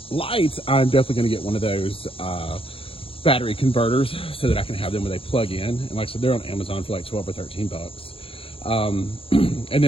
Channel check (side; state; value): right; late; 0.27 ms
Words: lights, I'm definitely going to get one of those battery converters so that I can have them when they plug in. And like I said, they're on Amazon for like 12 or 13 bucks. And